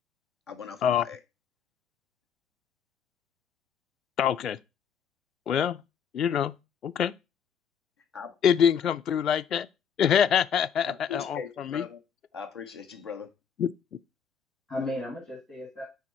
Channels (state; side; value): quieter; right; 7.7 dB